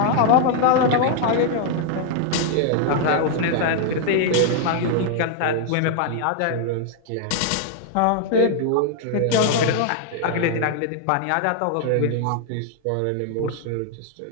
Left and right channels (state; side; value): different; both; correlation 0.00